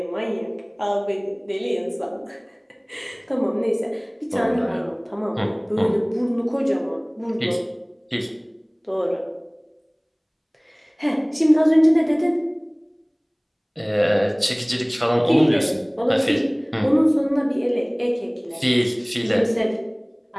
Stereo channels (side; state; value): both; identical; correlation 1.00